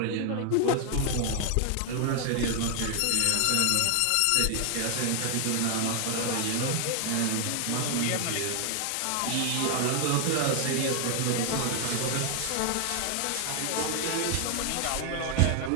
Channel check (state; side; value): different; both; correlation 0.00